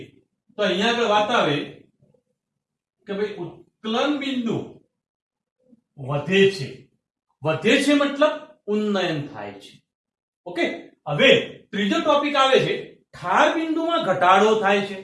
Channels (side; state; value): both; identical; correlation 1.00